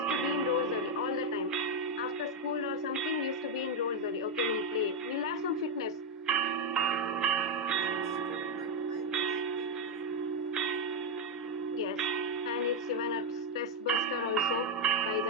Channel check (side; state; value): both; normal; correlation 0.03